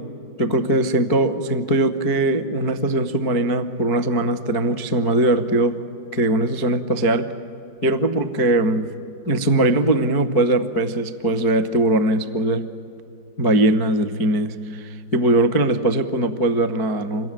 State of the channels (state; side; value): late; right; 4.6 ms